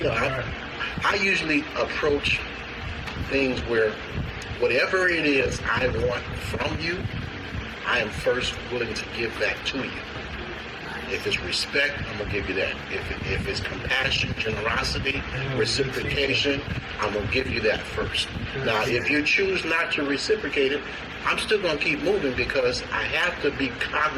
I usually approach things where whatever it is I want from you, I am first willing to give that to you. If it's respect, I'm going to give you that. If it's compassion, generosity, reciprocation, I'm going to give you that first. Now, if you choose not to reciprocate it, I'm still going to keep moving because I have to be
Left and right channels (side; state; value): both; identical; correlation 1.00